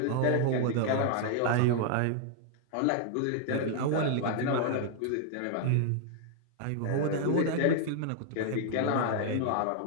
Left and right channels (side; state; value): both; different; correlation 0.00